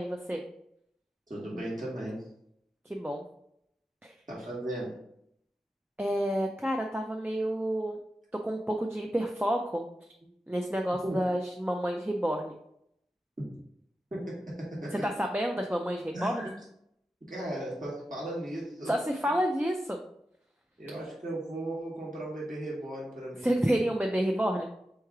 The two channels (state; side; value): normal; both; correlation 0.90